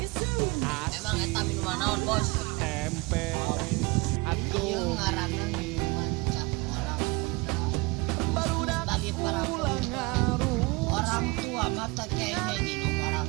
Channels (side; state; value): left; quieter; 25.5 dB